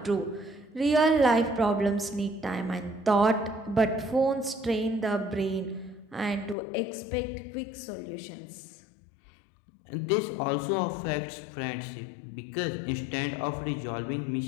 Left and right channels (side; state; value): right; drops out; at 6.6 s